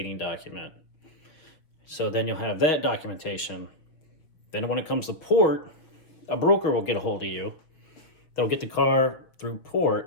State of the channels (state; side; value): late; right; 6.6 ms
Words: document. So then you'll have that documentation. Then when it comes to port, a broker will get a hold of you. They'll get the car through